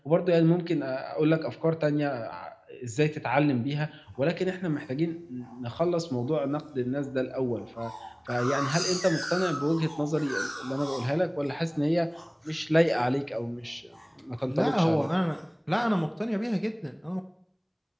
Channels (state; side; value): identical; both; correlation 1.00